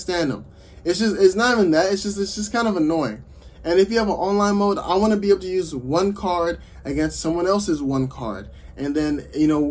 them. It's not even that. It's just kind of annoying. And if you have an online mode, I want to be able to use one card against someone else's one card. And then, you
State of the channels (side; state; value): both; identical; correlation 1.00